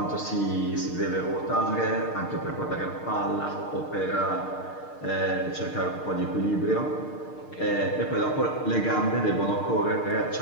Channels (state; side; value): late; right; 6.6 ms